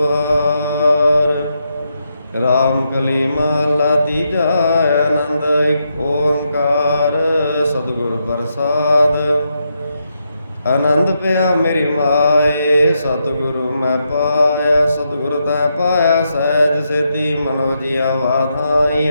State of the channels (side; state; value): both; inverted; correlation -0.82